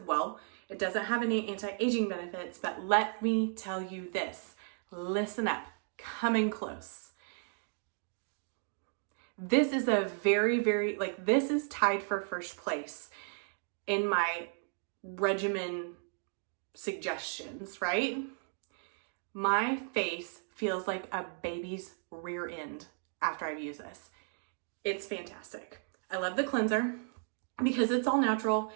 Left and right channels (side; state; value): left; silent; 55 dB below the other